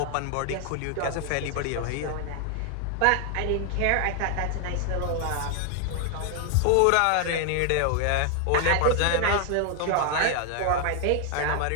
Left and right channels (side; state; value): both; different; correlation 0.00